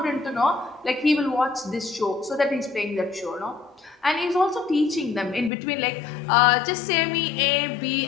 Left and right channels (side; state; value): right; drops out; at 5.5 s